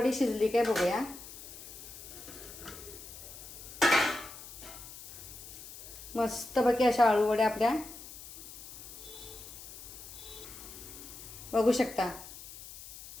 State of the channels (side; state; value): left; noise; hiss, 14 dB below the sound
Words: शिजली काय बघूया. मस्तपैकी अशा आळूवड्या आपल्या बघू शकता.